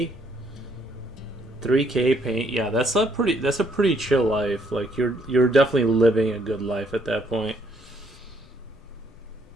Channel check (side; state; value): left; noise; rumble, 26 dB below the sound